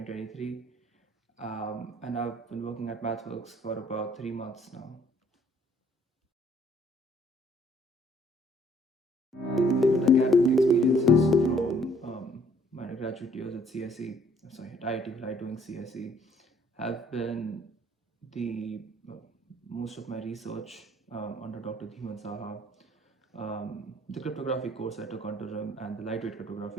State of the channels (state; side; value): normal; both; correlation 0.62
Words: and I've been working at MathWorks for about 3 months now. Favorite academic experiences from my graduate years at CSE, sorry, at IIT Bhilai doing CSE, have been the most of my research under Dr. Dhiman Saha, the cryptography course I took under him, and the lightweight